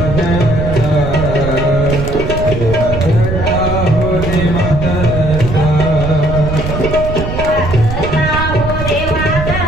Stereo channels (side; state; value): right; noise; rumble, 5 dB below the sound